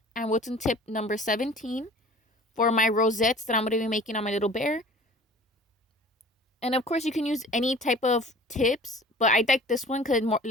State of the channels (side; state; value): both; normal; correlation 0.45